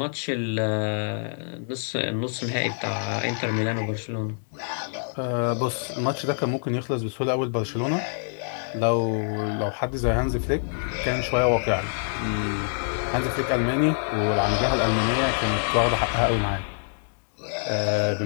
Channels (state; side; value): silent; right; digital silence